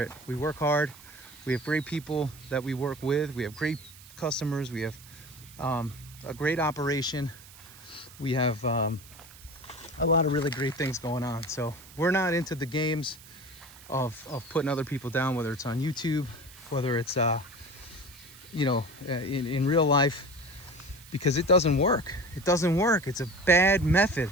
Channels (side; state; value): right; noise; hiss, 20 dB below the sound